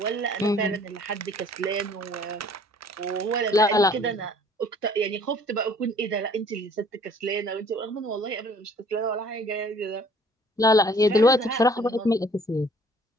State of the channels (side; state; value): both; normal; correlation 0.55